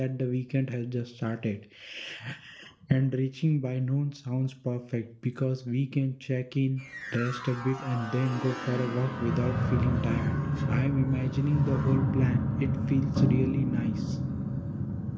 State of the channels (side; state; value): both; identical; correlation 1.00